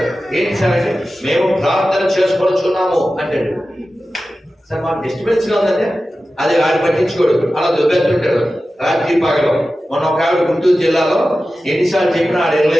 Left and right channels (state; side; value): normal; both; correlation 0.94